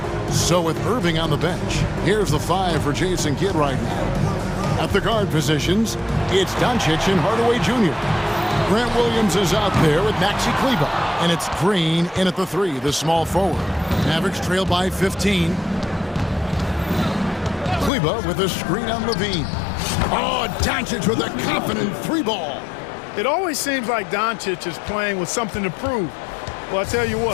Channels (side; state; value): right; drops out; at 17.9 s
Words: So with Irving on the bench, here's the 5 for Jason Kidd right now. At the guard positions, it's Doncic and Hardaway Jr. Grant Williams is out there with Maxi Kleber. And it's Green in at the 3, the small forward. Mavericks trail by 15. Kleber with a screen on Levine. Oh, Doncic with a confident 3 ball. It always seems like Doncic is playing with something to prove. Well, I tell you